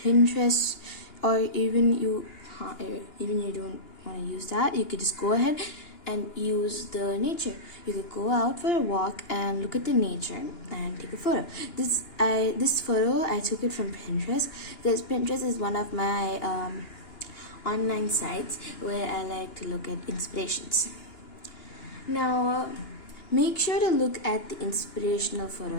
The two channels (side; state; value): right; late; 2.9 ms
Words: Pinterest, or even you don't want to use that, you could just go ahead and use the nature. You could go out for a walk and look at the nature and take a photo. This photo I took it from Pinterest because Pinterest is one of my online sites where I like to look at inspirations. Now make sure to look at the inspirational